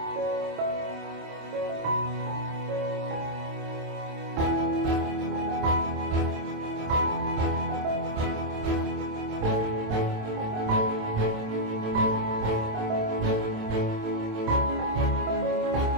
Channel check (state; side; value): late; left; 27 ms